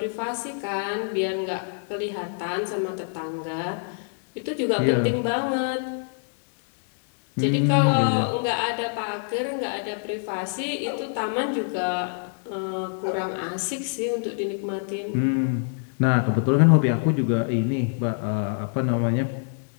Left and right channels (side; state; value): right; silent; 61 dB below the other